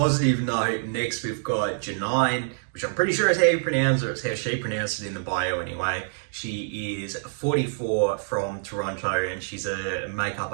note, next we've got Janine, which I'm pretty sure is how you pronounce it, or it's how she pronounced it in the bio anyway. She is 44 from Toronto, and she's a makeup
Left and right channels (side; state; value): left; silent; digital silence